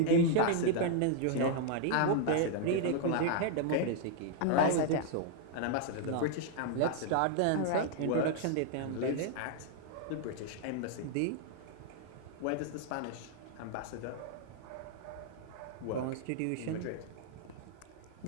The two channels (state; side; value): different; both; correlation 0.00